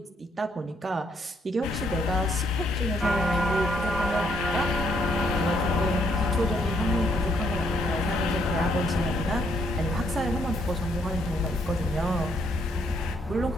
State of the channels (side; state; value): both; normal; correlation 0.72